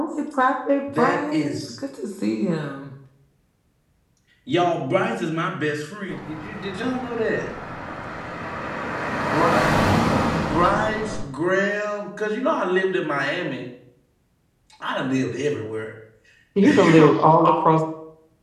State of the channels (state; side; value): identical; both; correlation 1.00